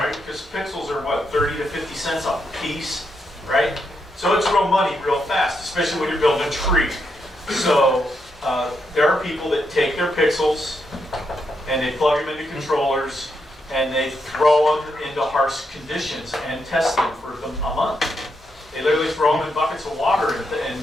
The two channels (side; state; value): both; normal; correlation 0.81